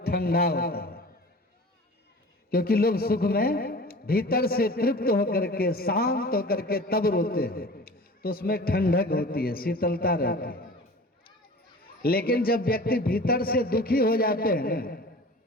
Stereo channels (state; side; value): normal; both; correlation 0.40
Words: ठंडा होता है, क्योंकि लोग सुख में भीतर से तृप्त होकर के, शांत होकर के तब रोते हैं, तो उसमें ठंडक होती है, शीतलता रहती है। लेकिन जब व्यक्ति भीतर से दुखी हो जाते हैं ना,